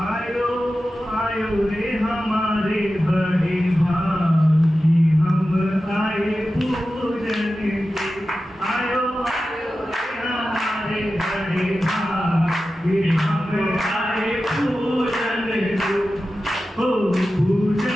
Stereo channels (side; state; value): both; normal; correlation 0.93